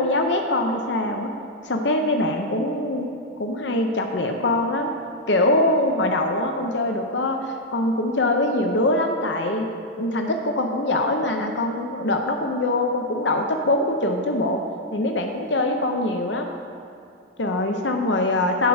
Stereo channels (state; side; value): normal; both; correlation -0.03